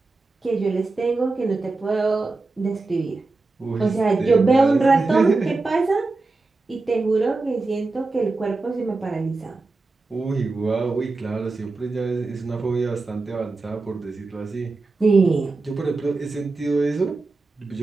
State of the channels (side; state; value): left; quieter; 3.5 dB